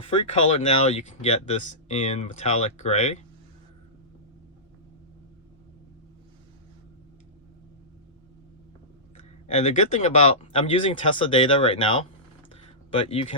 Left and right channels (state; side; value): normal; both; correlation -0.19